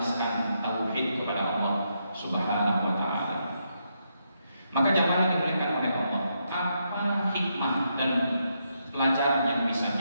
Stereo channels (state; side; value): inverted; both; correlation -0.80